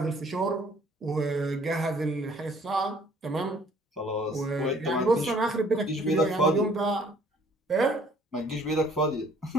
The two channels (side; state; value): both; normal; correlation 0.59